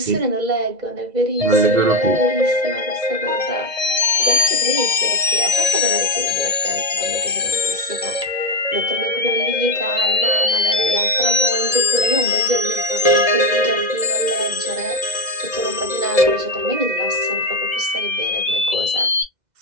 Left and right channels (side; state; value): left; late; 2.0 ms